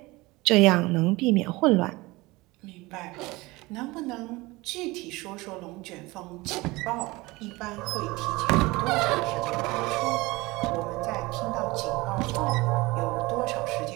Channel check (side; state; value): left; quieter; 22.0 dB